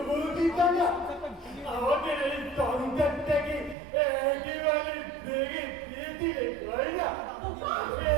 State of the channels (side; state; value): left; drops out; at 3.8 s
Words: বলতিটা না, আমাদের এই সংসারটাকে একেবারে ভেঙে দিয়ে দিলে দয়না,